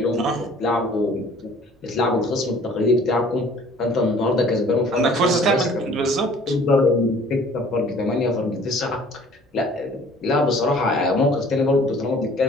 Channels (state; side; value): normal; both; correlation 0.52